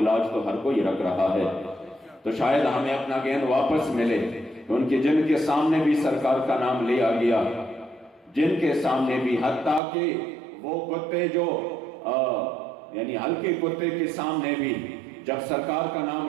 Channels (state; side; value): drops out; left; at 9.8 s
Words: لاج تو ہر کوئی رکھ رہا ہے، تو شاید ہمیں اپنا گیند واپس ملے۔ تو ان کے جن کے سامنے بھی سرکار کا نام لیا گیا، جن کے سامنے بھی، حتیٰ کہ وہ کتے جو یعنی ہلکے کتے کے سامنے بھی جب سرکار کا نام